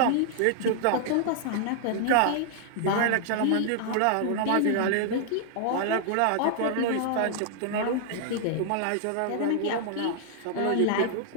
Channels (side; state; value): both; different; correlation -0.01